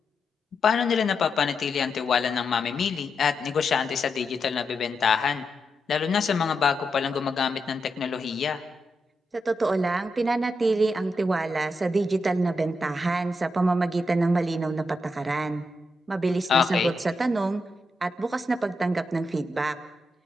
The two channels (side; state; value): both; normal; correlation 0.85